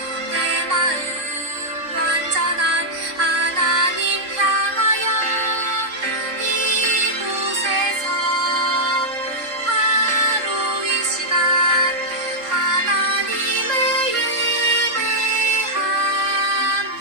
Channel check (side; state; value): left; late; 3.5 ms